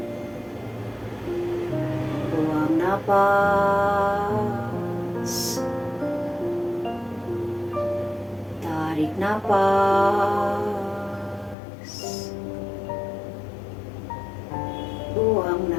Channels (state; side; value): drops out; right; at 11.6 s